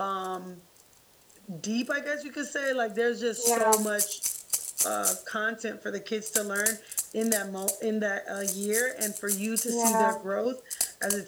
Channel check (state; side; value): identical; both; correlation 1.00